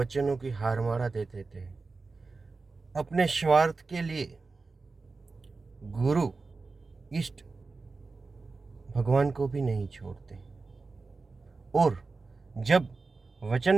की हारमारा दे देते हैं। अपने स्वार्थ के लिए गुरु, इष्ट, भगवान को भी नहीं छोड़ते। और जब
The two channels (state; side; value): quieter; left; 4.0 dB